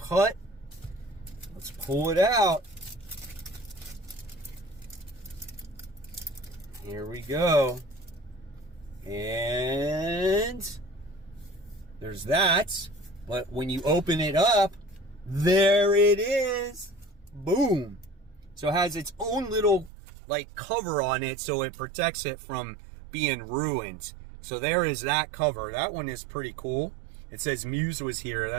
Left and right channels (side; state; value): left; drops out; at 19.9 s